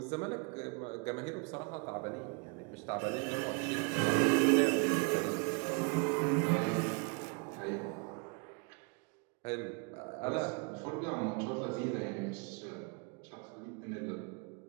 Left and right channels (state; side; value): quieter; left; 34.3 dB